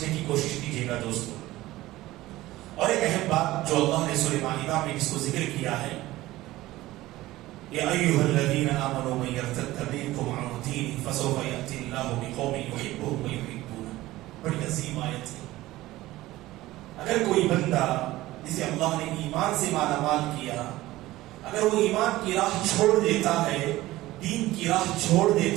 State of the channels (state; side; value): quieter; left; 17.2 dB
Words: کی کوشش کیجیے گا دوستو. اور ایک اہم بات جو اللہ نے سورہ مائدہ میں جس کو ذکر کیا ہے، یا ایھا الذین آمنوا من یرتد منکم عن دینہ فسوف یأتی اللہ بقوم یحبهم ویحبونہ. بڑی عظیم آیت ہے. اگر کوئی بندہ جسے اللہ نے ایمان سے مالا مال کیا، اگر وہ ایمان کی راہ چھوڑ دیتا ہے، دین کی راہ چھوڑ